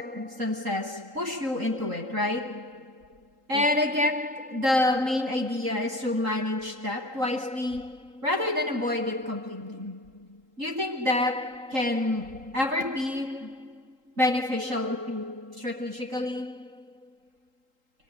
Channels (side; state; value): left; late; 3.8 ms